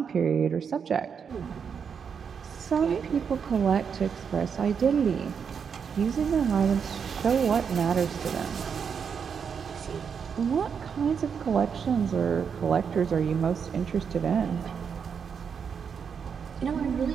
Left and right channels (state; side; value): quieter; left; 6.7 dB